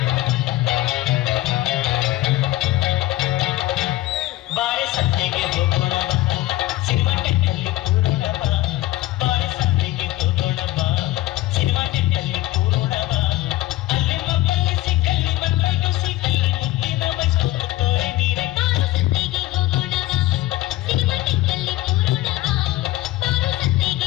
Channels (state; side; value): quieter; right; 16.8 dB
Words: ಬಾಳೆ ಸಂತೆಗೆ ಹೋಗೋಣ ಬಾ, ಸಿನಿಮಾ ಟೆಕ್ಕಲ್ಲಿ ಕೂರೋಣ ಬಾ. ಬಾಳೆ ಸಂತೆಗೆ ಹೋಗೋಣ ಬಾ, ಸಿನಿಮಾ ಟೆಕ್ಕಲ್ಲಿ ಕೂರೋಣ ಬಾ. ಅಲ್ಲಿ ಮಕ್ಕಳು ಸಿಕ್ಕಲ್ಲಿ ಮಕ್ಕಳು ಸಿಕ್ಕಲ್ಲಿ ಮುದ್ದಿನ ಬೈಸ್ಕೊಂಡು ತೋರೆ ನೀರೆ. ಬಾರು ಸಂತೆಗೆ ಹೋಗೋಣ ಬಾ, ಸಿನಿಮಾ ಟೆಕ್ಕಲ್ಲಿ ಕೂರೋಣ ಬಾ. ಬಾರು